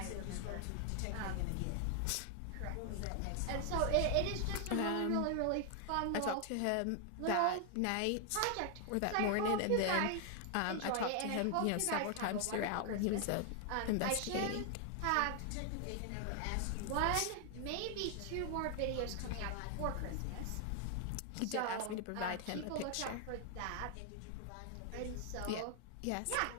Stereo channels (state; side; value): different; both; correlation 0.00